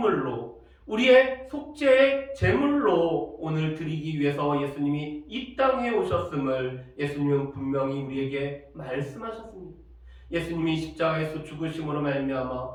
우리의 속죄의 제물로 오늘 드리기 위해서 예수님이 이 땅에 오셨음을 예수님은 분명히 우리에게 말씀하셨습니다. 예수님이 십자가에서 죽으심으로 말미암아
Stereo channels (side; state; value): both; identical; correlation 1.00